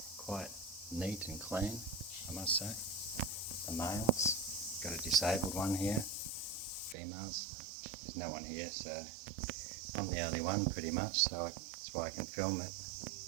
Quite neat and clean, I must say. The males. Got a disabled one here. Females. There's no one here, so I'm the only one pretty much, so that's why I can film it.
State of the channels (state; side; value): drops out; left; at 7.0 s